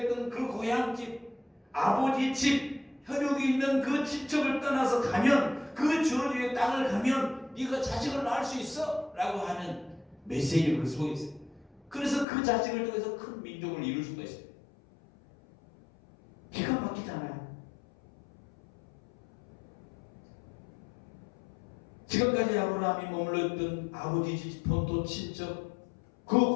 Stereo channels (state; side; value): drops out; right; at 12.2 s